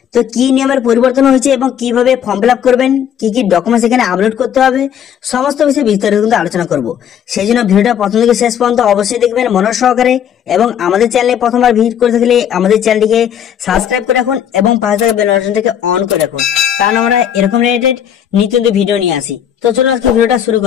তো কি নিয়মের পরিবর্তন হয়েছে এবং কিভাবে ফর্ম ফিল আপ করবেন, কি কি ডকুমেন্টস এখানে আপলোড করতে হবে, সমস্ত বিষয়ে বিস্তারিত কিন্তু আলোচনা করব। সেই জন্য ভিডিওটা প্রথম থেকে শেষ পর্যন্ত অবশ্যই দেখবেন মনোযোগ সহকারে। এবং আমাদের চ্যানেলে প্রথমবার ভিজিট করে থাকলে আমাদের চ্যানেলটিকে সাবস্ক্রাইব করে রাখুন এবং পাশে থাকা বেল বাটনটিকে অন করে রাখুন, কারণ আমরা এরকম রিলেটেড নিত্য ভিডিও নিয়ে আসি। তো চলুন আজকে ভিডিওটা শুরু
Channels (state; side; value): quieter; right; 9.2 dB